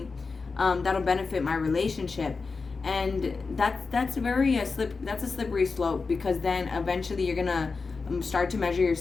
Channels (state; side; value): quieter; right; 4.4 dB